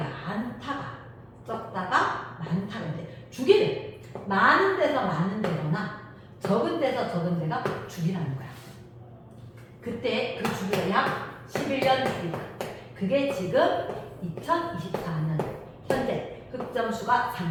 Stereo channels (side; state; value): both; identical; correlation 1.00